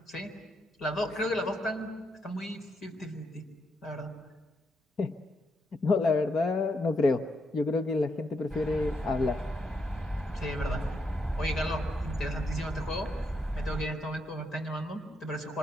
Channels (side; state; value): both; normal; correlation 0.79